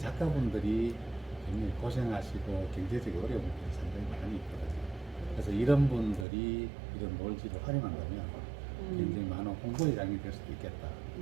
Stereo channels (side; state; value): left; drops out; at 6.2 s